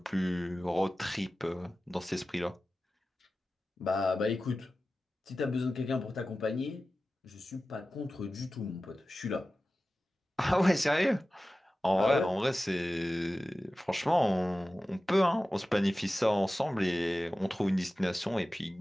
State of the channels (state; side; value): normal; both; correlation 0.95